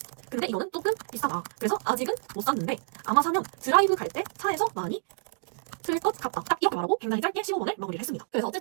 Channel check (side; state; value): left; silent; digital silence